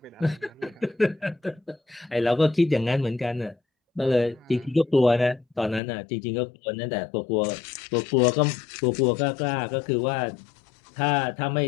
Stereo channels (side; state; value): right; drops out; at 5.8 s